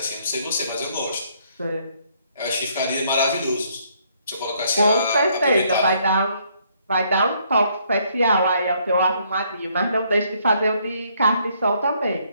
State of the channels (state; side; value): inverted; both; correlation -0.68